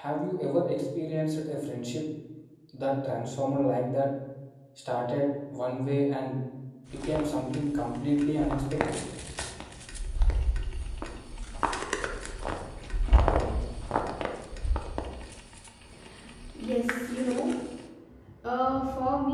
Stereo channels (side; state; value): both; identical; correlation 1.00